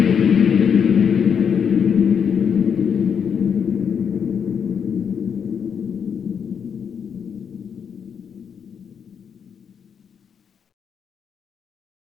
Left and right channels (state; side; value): quieter; right; 7.2 dB